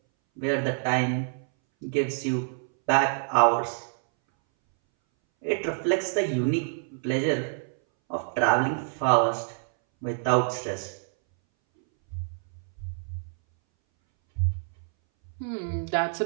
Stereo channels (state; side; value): silent; left; 60 dB below the other